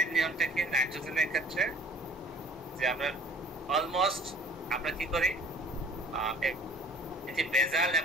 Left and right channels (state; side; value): normal; both; correlation 0.50